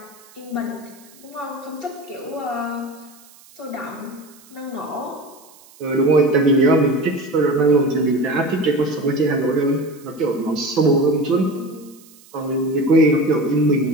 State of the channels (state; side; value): noise; right; hiss, 25 dB below the sound